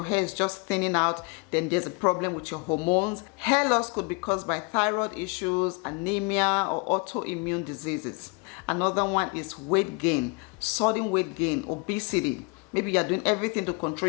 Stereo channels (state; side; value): quieter; right; 31.2 dB